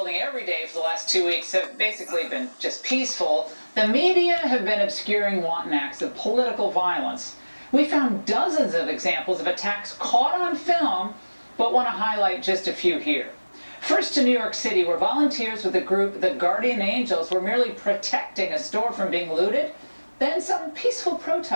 every day for the last 2 weeks have basically been just peaceful, the media have been obscuring wanton acts of political violence. We found dozens of examples of attacks caught on film, but want to highlight just a few here. First to New York City, where volunteers with the group The Guardian Angels were merely protecting a store from being looted. Then some peaceful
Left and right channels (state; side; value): inverted; both; correlation -1.00